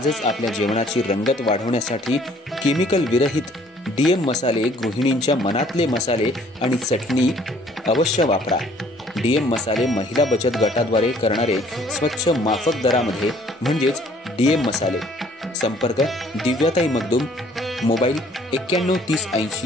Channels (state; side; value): normal; both; correlation 0.58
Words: आपल्या जेवणाची रंगत वाढवण्यासाठी केमिकल विरहित डीएम मसाले, गृहिणींच्या मनातले मसाले आणि चटणी अवश्य वापरा। डीएम मसाले महिला बचत गटाद्वारे करणारे स्वच्छ माफक दरामध्ये म्हणजेच डीएम मसाले। संपर्क दिव्याताई मगदूम, मोबाईल 91 30